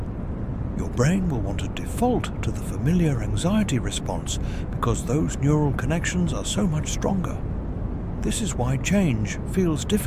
Your brain will want to default to the familiar anxiety response because those neural connections are so much stronger. This is why change feels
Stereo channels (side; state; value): both; identical; correlation 1.00